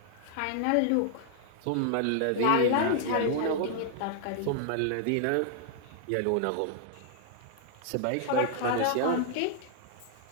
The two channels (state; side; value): different; both; correlation -0.01